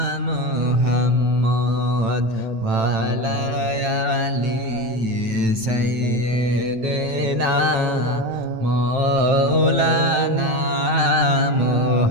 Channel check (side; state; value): left; late; 9.0 ms